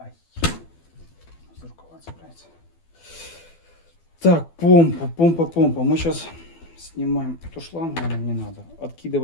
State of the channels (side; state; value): right; late; 12 ms